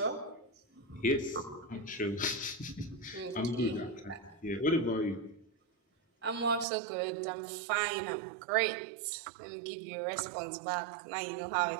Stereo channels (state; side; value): drops out; left; at 6.7 s